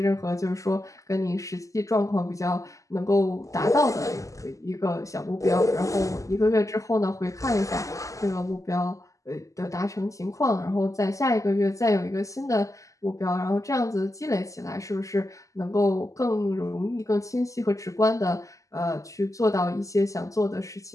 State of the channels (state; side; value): late; right; 0.16 ms